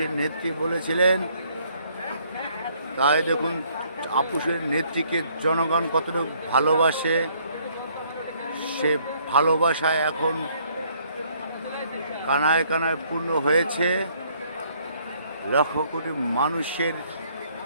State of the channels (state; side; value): inverted; both; correlation -0.65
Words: নেত্রী বলেছিলেন। তাই দেখুন আপোষের নেত্রীকে জনগণ কতটুকু ভালোবাসে, সে ভালোবাসায় এখন কানায় কানায় পূর্ণ হয়েছে। লক্ষ কোটি মানুষের